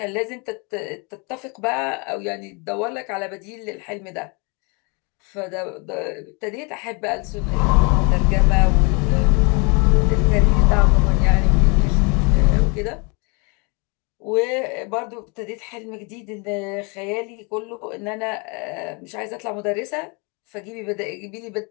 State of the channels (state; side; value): quieter; right; 31.8 dB